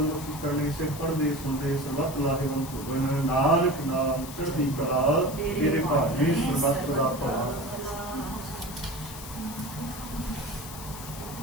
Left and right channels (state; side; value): noise; left; hiss, 13 dB below the sound